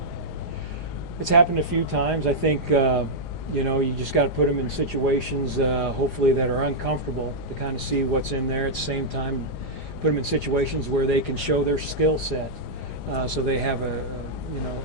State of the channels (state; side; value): late; right; 4.9 ms